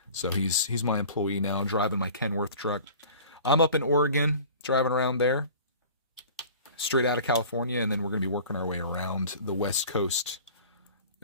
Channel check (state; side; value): inverted; both; correlation -0.43